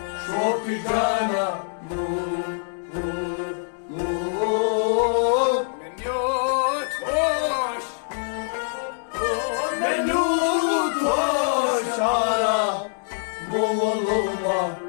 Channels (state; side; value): silent; right; digital silence